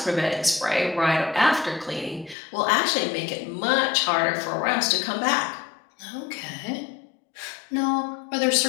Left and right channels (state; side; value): drops out; right; at 2.4 s